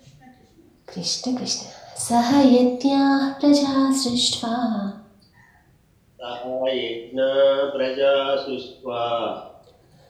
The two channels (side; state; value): both; identical; correlation 1.00